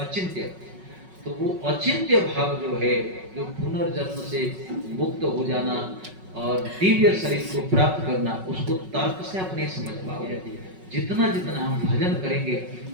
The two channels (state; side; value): late; left; 5.4 ms